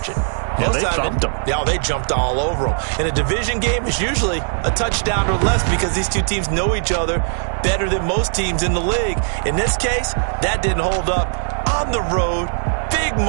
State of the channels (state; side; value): silent; left; digital silence